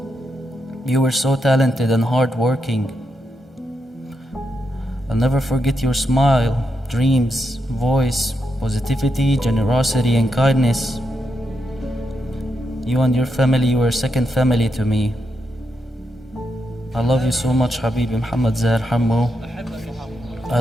You were so talented and hardworking. I'll never forget your smile, dreams, voice, positivity, generosity, and kindness. You and your family were a second family to me. I love you so much, Habibi Mohammed Zaher Hammo. I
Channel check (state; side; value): normal; both; correlation 0.83